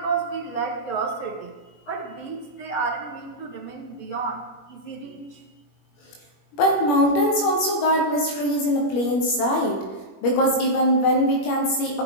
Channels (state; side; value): late; right; 21 ms